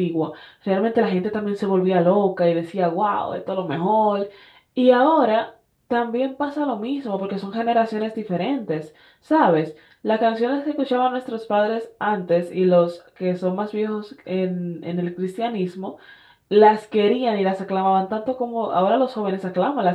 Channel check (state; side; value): identical; both; correlation 1.00